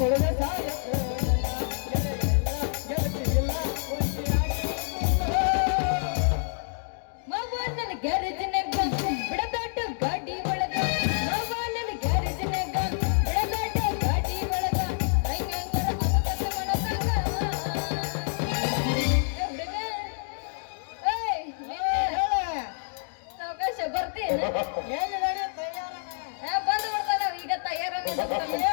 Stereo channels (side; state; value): right; silent; digital silence